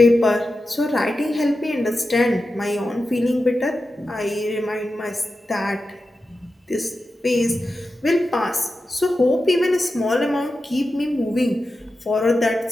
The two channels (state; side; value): normal; both; correlation 0.91